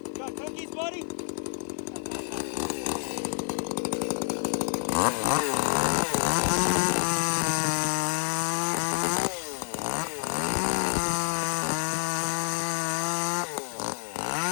You got cookies, buddy?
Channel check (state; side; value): silent; right; 59 dB below the other